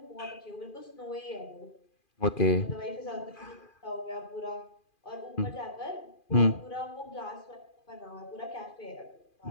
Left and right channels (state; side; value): late; right; 2.4 ms